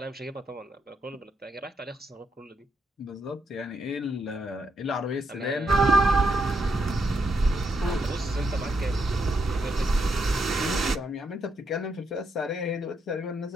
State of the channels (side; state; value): both; normal; correlation 0.78